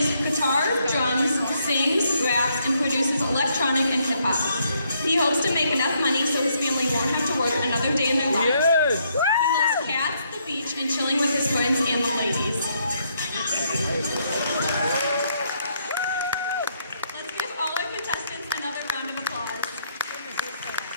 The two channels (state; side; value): inverted; both; correlation -0.73